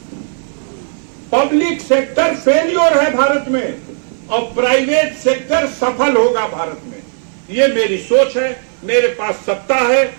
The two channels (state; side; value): silent; left; 57 dB below the other